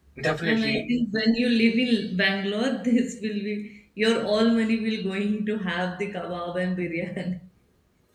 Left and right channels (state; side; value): identical; both; correlation 1.00